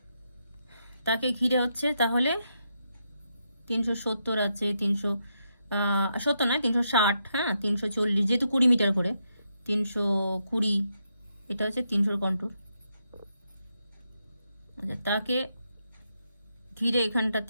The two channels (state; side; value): inverted; both; correlation -0.81